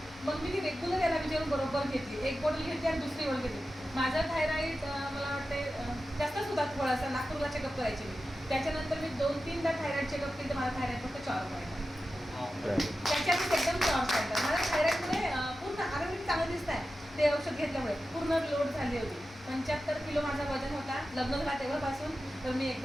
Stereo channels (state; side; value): normal; both; correlation 0.93